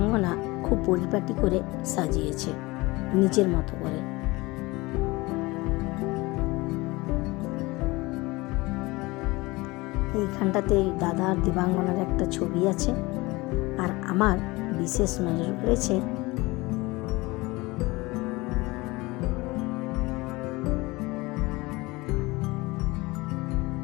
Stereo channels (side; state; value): right; quieter; 22.4 dB